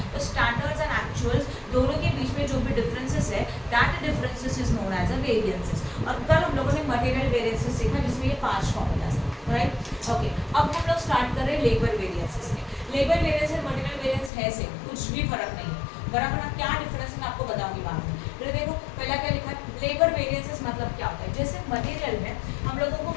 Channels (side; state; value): right; drops out; at 14.3 s